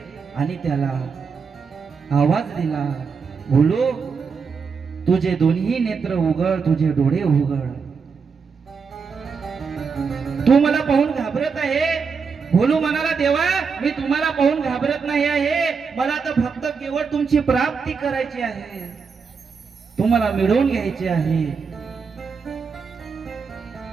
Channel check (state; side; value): quieter; left; 5.5 dB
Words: आणि त्याला आवाज दिला, भोलू तुझे दोन्ही नेत्र उघड, तुझे डोळे उघड. तू मला पाहून घाबरत आहे? भोलू म्हणाला, देवा मी तुम्हाला पाहून घाबरत नाही आहे, मला तर फक्त केवळ तुमची प्राप्ती करायची आहे, तुम्हाला मिळवून घ्यायची आहे.